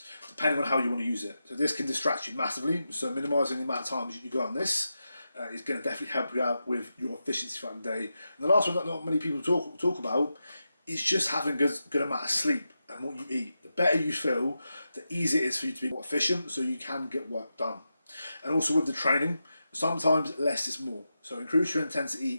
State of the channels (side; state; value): both; inverted; correlation -0.89